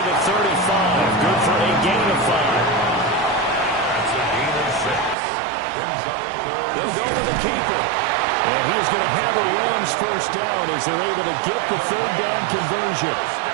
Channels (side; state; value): left; drops out; at 5.2 s